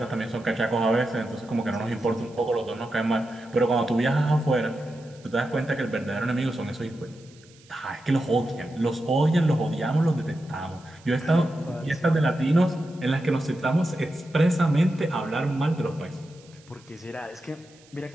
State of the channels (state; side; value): noise; right; hiss, 27 dB below the sound